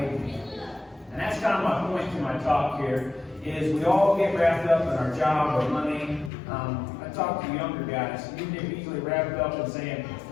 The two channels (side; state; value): right; drops out; at 6.3 s